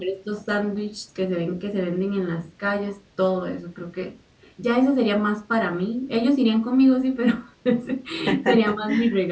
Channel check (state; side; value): identical; both; correlation 1.00